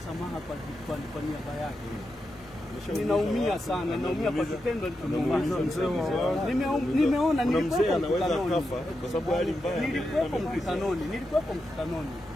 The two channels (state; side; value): noise; left; rumble, 23 dB below the sound